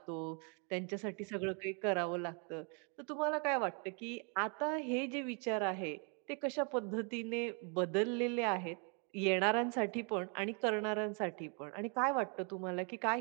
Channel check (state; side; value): quieter; left; 37.7 dB